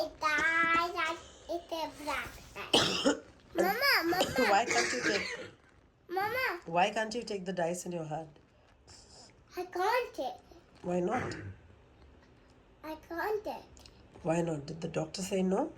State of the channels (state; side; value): identical; both; correlation 1.00